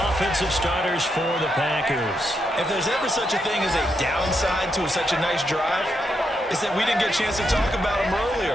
offensive starters for the Packers. If there's ever such a thing as a downside to such a nice drive, it's that we didn't get a chance to talk about them earlier.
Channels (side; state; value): both; normal; correlation 0.81